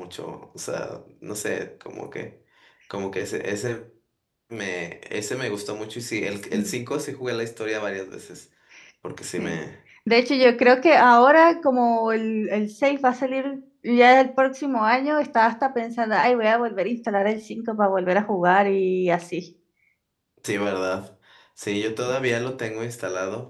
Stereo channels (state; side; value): identical; both; correlation 1.00